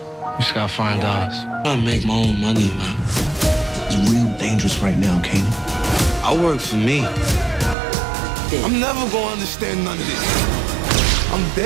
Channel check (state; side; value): drops out; left; at 7.8 s